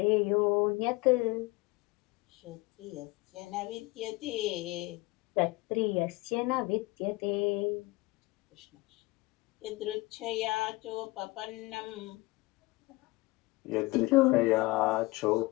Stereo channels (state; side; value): quieter; right; 22.1 dB